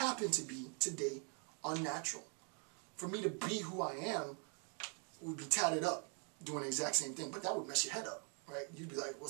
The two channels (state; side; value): quieter; left; 39.8 dB